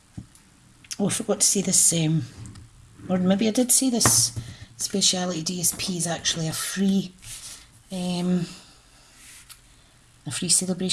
Oh, I forgot to say this, or maybe I did say this. Speciality DSP is actually a free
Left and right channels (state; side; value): identical; both; correlation 1.00